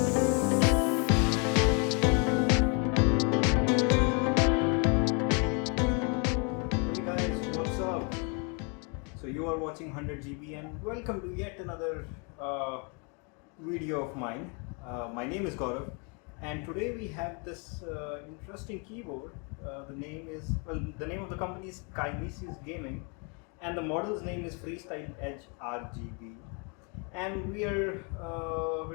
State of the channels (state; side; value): quieter; right; 35.1 dB